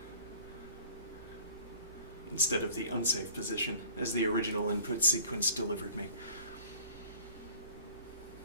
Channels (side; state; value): both; inverted; correlation -0.49